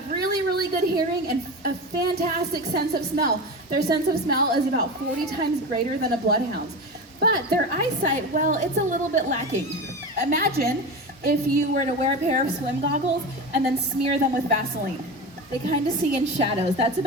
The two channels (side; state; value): both; normal; correlation 0.25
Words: really, really good hearing and a fantastic sense of smell. Their sense of smell is about 40 times greater than a bloodhound's. But their eyesight, well, it's a little bit lacking. Imagine if you were to wear a pair of swim goggles and then smear them with Vaseline. They kind of see in shadows. That's